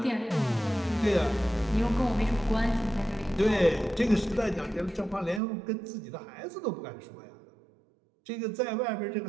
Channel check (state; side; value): drops out; left; at 5.4 s